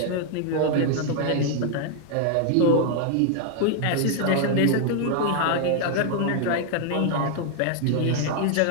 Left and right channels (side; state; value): both; different; correlation 0.00